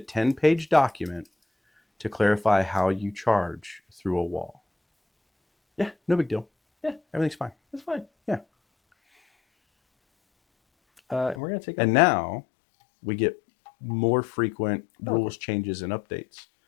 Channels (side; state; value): right; drops out; at 11.4 s